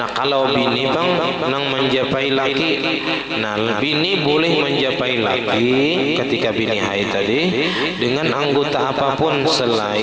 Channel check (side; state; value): both; identical; correlation 1.00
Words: kalau bini bang nang menjapai laki, nah bini boleh menjapai laki ketika bini haid tadi dengan anggota apapun